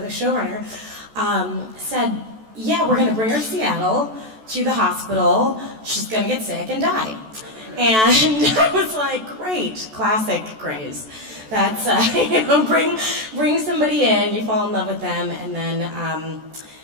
showrunner, said, yeah, we're going to bring her to Seattle, to the hospital. She's going to get sick and die. And I was like, great, classic Grays. That's, bring somebody in, you fall in love with them, and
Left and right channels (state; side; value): late; left; 14 ms